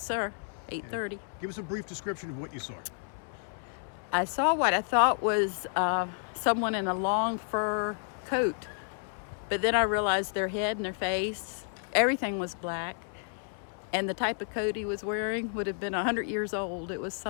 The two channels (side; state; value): right; silent; 57 dB below the other